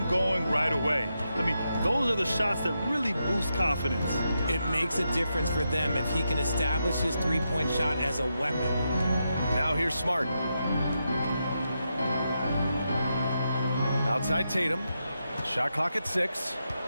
going right away. I mean, those are the shots that really boost confidence. It makes a difference for them if he can establish his three-point shot as a weapon. Now here's Smart. Outside Tatum. Shot clock at 6.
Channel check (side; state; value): both; inverted; correlation -0.85